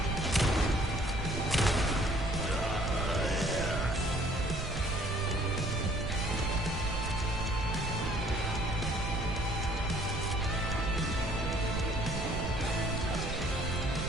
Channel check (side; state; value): right; noise; rumble, 6 dB below the sound